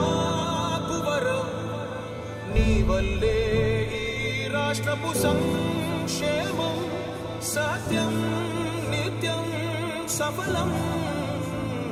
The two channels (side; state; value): both; identical; correlation 1.00